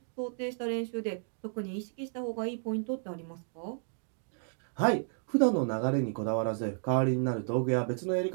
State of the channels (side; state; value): left; silent; digital silence